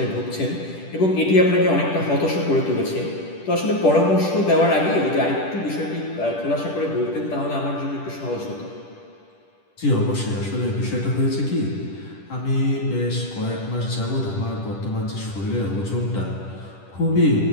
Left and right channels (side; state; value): right; late; 10 ms